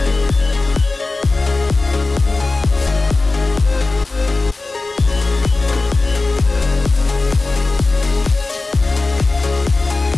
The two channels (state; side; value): quieter; right; 3.4 dB